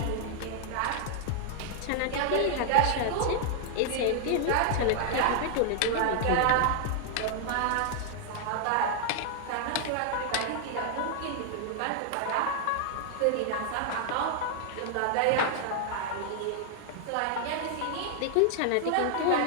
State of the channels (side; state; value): both; different; correlation 0.00